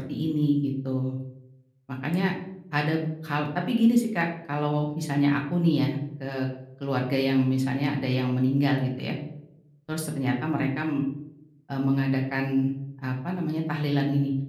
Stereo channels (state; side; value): identical; both; correlation 1.00